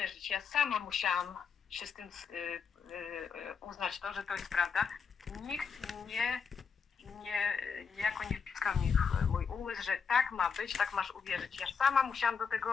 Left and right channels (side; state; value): right; quieter; 6.1 dB